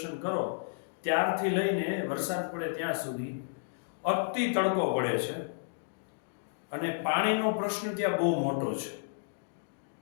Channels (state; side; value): silent; right; digital silence